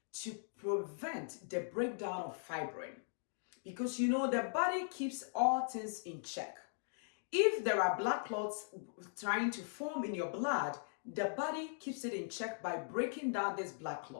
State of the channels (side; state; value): right; silent; digital silence